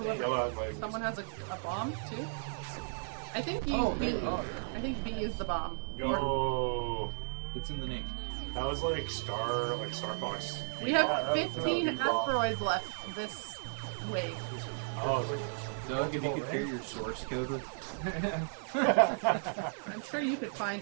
has a bomb too. I think B. Oh, B. oh. I think B is the bomb. Yo, It's in the name. that was like Star Fox. We have Yeah, that was 15 a bomb. asteroids left this wave. Oh, Doug, if you could share your source code with. I'm sure you could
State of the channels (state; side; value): silent; left; digital silence